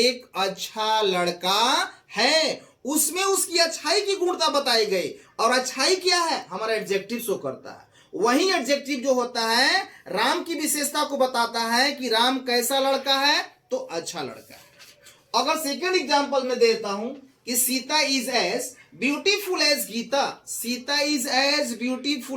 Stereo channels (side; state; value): both; identical; correlation 1.00